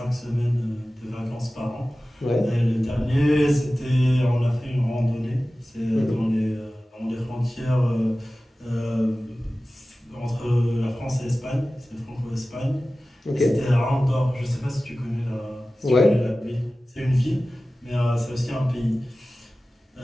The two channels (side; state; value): both; normal; correlation 0.96